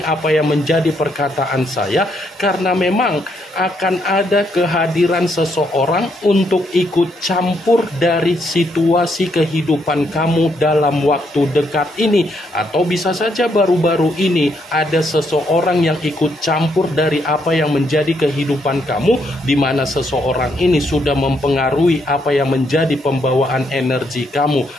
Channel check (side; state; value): both; normal; correlation 0.75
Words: yang menjadi perkataan saya? Karena memang akan ada kehadiran seseorang untuk ikut campur dari situasi kehidupan kamu dalam waktu dekat ini. Atau bisa saja baru-baru ini ada seseorang yang ikut campur dari apa yang menjadi kehidupan kamu, di mana seseorang ini sudah mempengaruhi apa yang menjadi pembawaan energi kamu